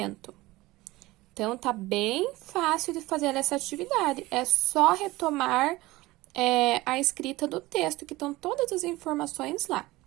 Então, tá bem fácil de fazer essa atividade. É só retomar a escrita do texto, que estão todas as informações lá.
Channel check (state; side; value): quieter; left; 19.4 dB